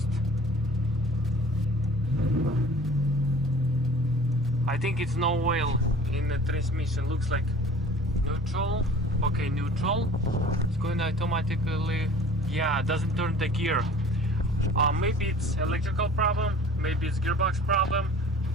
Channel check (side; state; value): both; normal; correlation 0.46